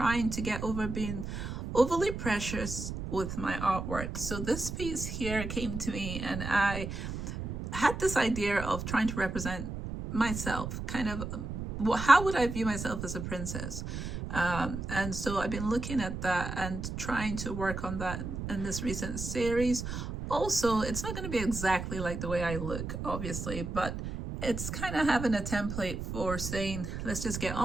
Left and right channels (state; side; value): noise; right; rumble, 5 dB below the sound